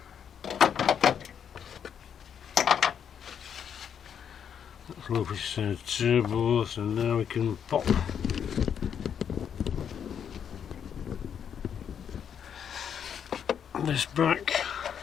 Low pressure turbo, so now we can pop this back.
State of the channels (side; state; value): right; quieter; 8.1 dB